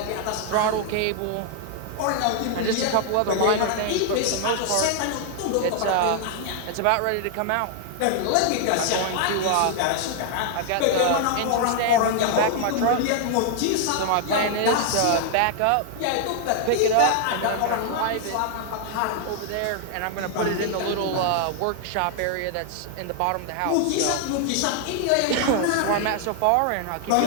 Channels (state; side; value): different; both; correlation 0.00